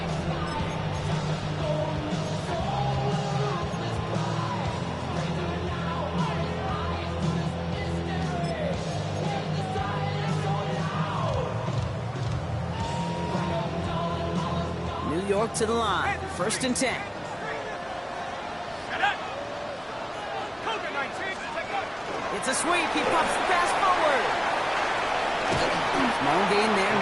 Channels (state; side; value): identical; both; correlation 1.00